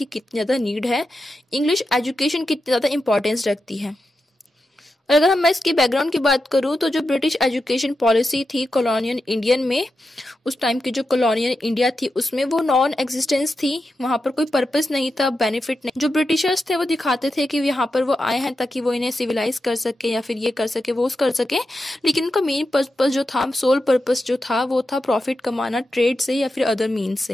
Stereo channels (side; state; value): both; normal; correlation 0.89